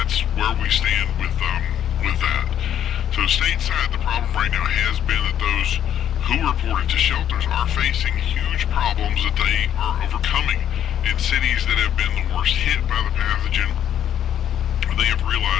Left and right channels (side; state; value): right; quieter; 10.3 dB